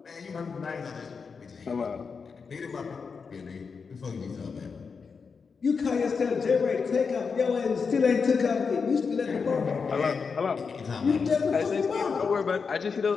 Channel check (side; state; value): right; quieter; 5.4 dB